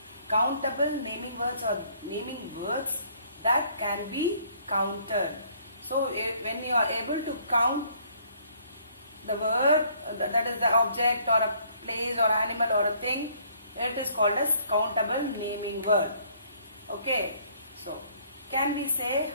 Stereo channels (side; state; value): both; inverted; correlation -0.62